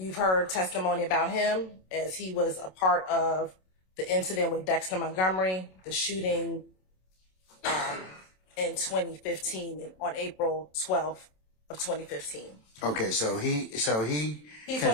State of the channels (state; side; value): late; right; 27 ms